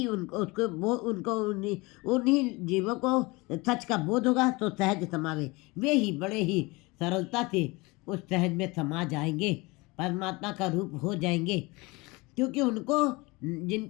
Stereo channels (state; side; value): quieter; right; 24.3 dB